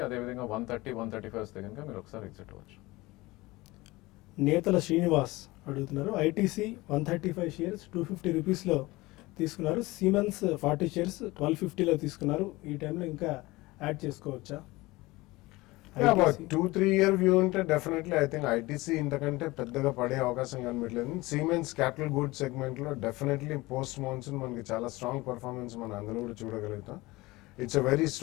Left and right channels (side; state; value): right; quieter; 20.9 dB